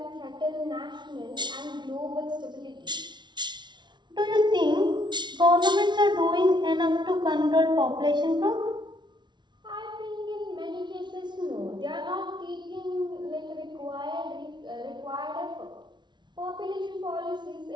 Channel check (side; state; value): left; late; 0.21 ms